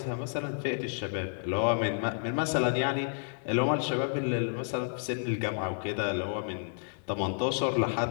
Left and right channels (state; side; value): silent; right; digital silence